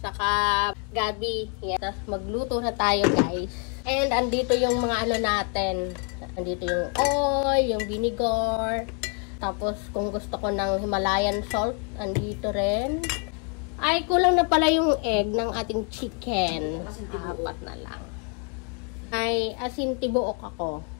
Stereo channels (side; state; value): right; quieter; 38.3 dB